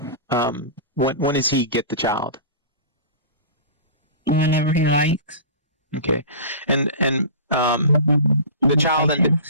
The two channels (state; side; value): inverted; both; correlation -0.34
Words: When does he get the child? Whenever he likes. Okay. And the child